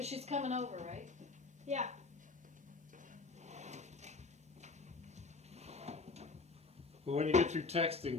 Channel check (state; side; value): quieter; right; 4.0 dB